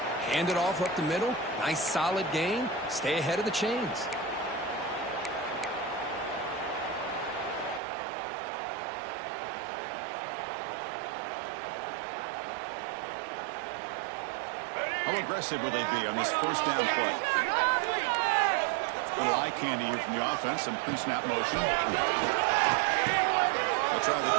hand it off up the middle. Nice solid gain. Stay ahead of the chains. How aggressive will they be on this first down play? A little eye candy here from the offense. Some pre-snap motion. They'll try the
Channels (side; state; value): left; drops out; at 7.8 s